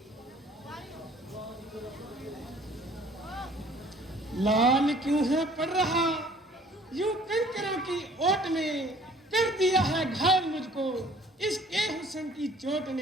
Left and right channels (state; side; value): normal; both; correlation 0.54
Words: लाल क्यों है पड़ रहा यूं कंकरों की ओट में, कर दिया है घायल मुझको इसके हुस्न की चोट